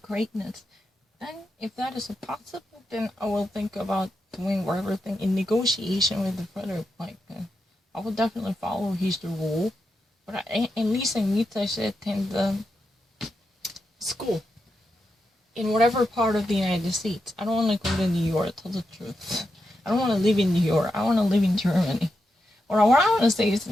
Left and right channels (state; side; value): normal; both; correlation 0.87